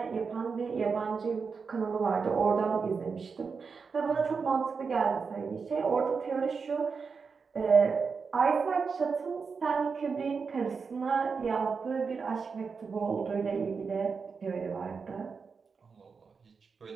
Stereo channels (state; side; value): quieter; left; 5.3 dB